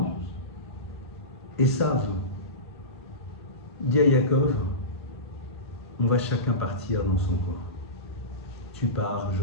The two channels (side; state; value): both; normal; correlation -0.20